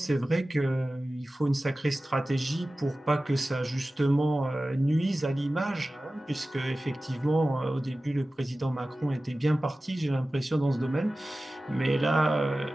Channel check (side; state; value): both; normal; correlation 0.96